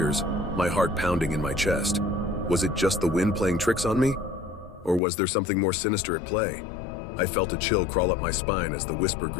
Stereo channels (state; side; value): drops out; right; at 5.0 s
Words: my heart pounding in my chest. Was it just the wind playing tricks on me? Or was there something more sinister at play? I felt a chill crawl up my spine as the whisper